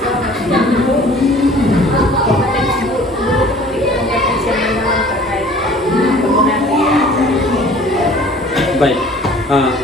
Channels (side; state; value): both; normal; correlation 0.49